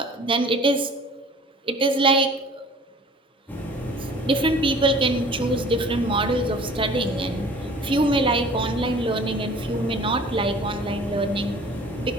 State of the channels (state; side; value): normal; both; correlation 0.48